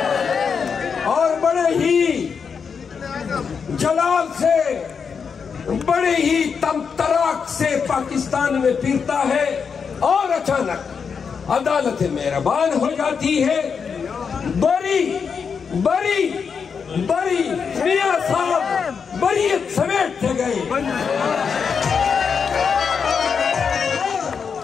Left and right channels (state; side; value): quieter; right; 6.1 dB